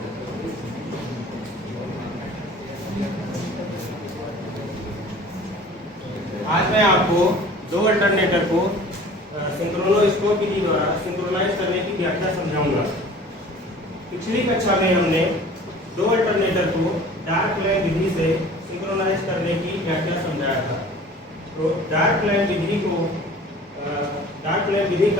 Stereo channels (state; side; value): normal; both; correlation 0.45